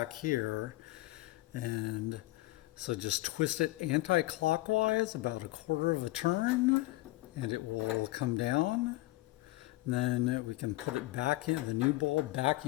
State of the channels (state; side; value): quieter; right; 19.0 dB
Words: here. And so just twist it anti-clockwise about a quarter of a turn, and it will come down. And then we can put it back in, the new bulb back